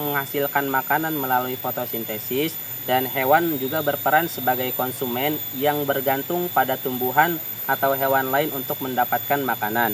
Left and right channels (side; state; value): both; identical; correlation 1.00